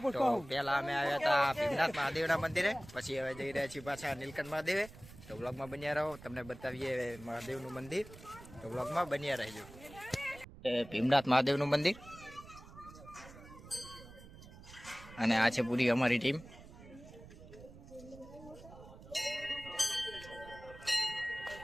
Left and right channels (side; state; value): right; noise; rumble, 17 dB below the sound